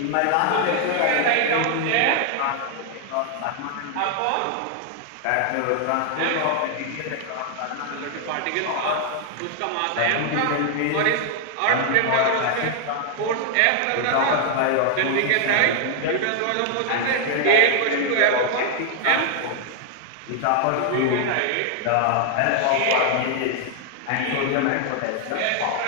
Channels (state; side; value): different; both; correlation 0.00